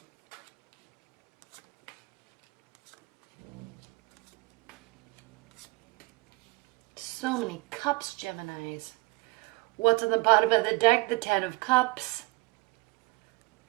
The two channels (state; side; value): quieter; left; 24.3 dB